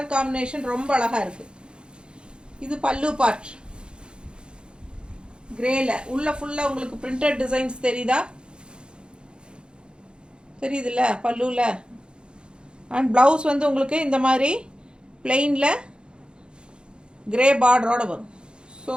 காம்பினேஷன் ரொம்ப அழகாக இருக்குது. இது பல்லு பார்ட் கிரேல உள்ள ஃபுல்லாக உங்களுக்கு பிரிண்டட் டிசைன்ஸ் தெரியுதா? தெரியுதுல்ல பல்லுவில்? அண்ட் ப்ளவுஸ் வந்து உங்களுக்கு இந்த மாதிரி பிளெயினில் கிரே பார்டரோடு வரும். ஸோ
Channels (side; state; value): left; late; 0.051 ms